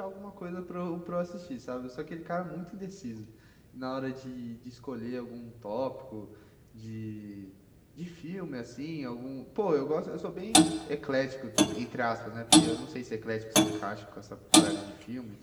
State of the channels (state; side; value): identical; both; correlation 1.00